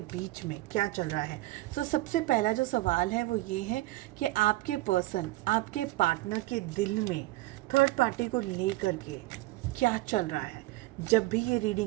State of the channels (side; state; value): left; quieter; 18.8 dB